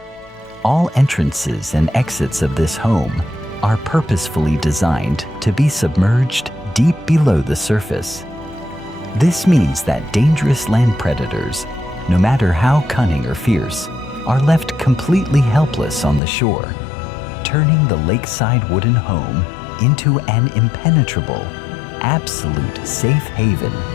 All entrances and exits of this home are purposefully designed to be submerged deep below the surface. This means that dangerous land predators, no matter how cunning or fierce, are left completely helpless on the shore, turning the lakeside wooden home into an impenetrable, absolute safe haven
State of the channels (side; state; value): right; drops out; at 16.2 s